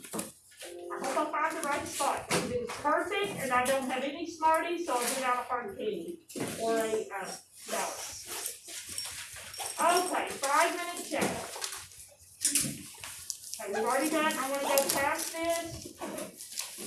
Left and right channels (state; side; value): identical; both; correlation 1.00